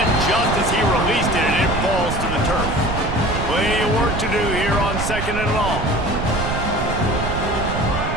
just as he released it, and it falls to the turf. Plenty of work to do here on 2nd and long.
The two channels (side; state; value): right; noise; rumble, 5 dB below the sound